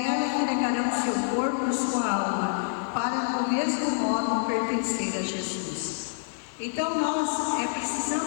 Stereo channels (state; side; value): silent; right; digital silence